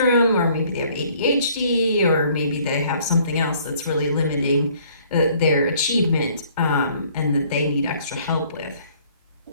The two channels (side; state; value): both; inverted; correlation -0.59